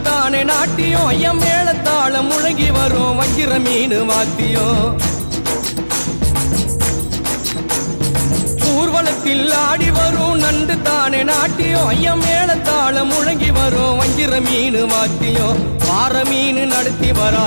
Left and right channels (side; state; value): both; inverted; correlation -1.00